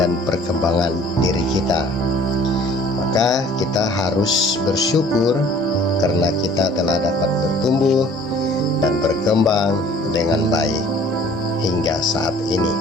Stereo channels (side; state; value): both; normal; correlation 0.52